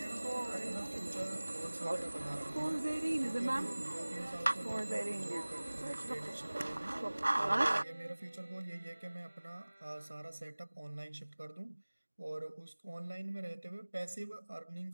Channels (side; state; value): both; inverted; correlation -1.00